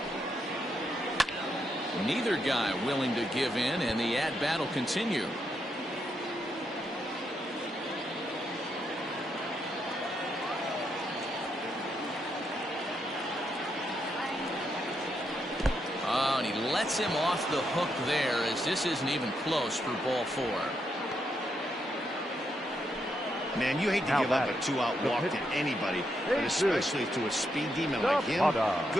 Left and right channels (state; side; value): normal; both; correlation 0.80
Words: Neither guy willing to give in, and the at-bat will continue. Oh, and he lets him off the hook there, as this isn't even close for ball 4. Man, you hate to give up a 2-out walk to anybody, but especially to a speed demon like him.